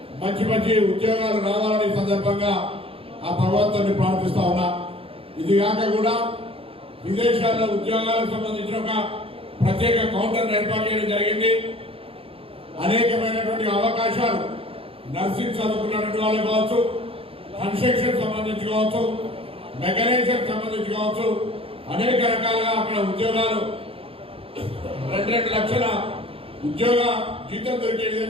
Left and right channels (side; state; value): left; late; 0.27 ms